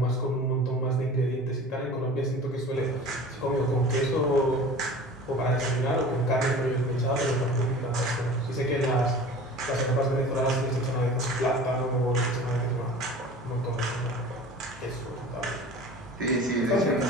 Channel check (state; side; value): normal; both; correlation 0.40